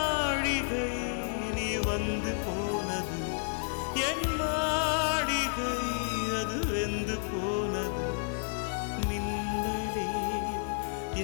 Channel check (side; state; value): right; silent; 57 dB below the other